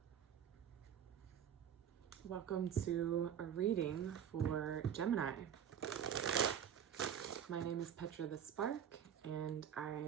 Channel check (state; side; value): quieter; left; 8.9 dB